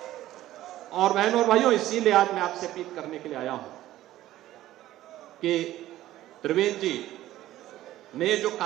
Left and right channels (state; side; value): quieter; left; 14.5 dB